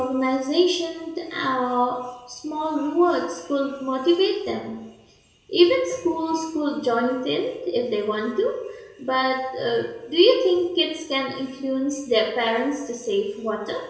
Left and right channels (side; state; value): both; identical; correlation 1.00